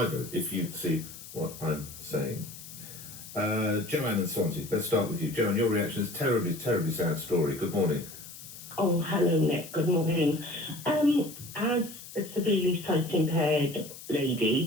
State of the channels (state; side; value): noise; left; hiss, 15 dB below the sound